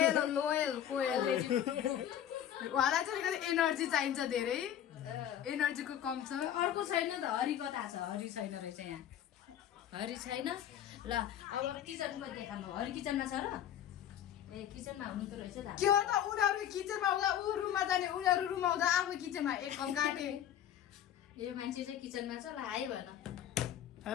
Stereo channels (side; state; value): right; quieter; 10.5 dB